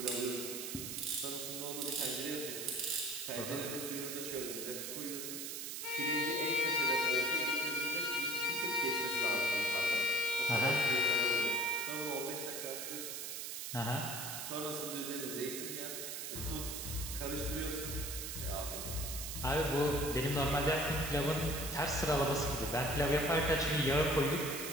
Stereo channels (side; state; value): right; noise; hiss, 5 dB below the sound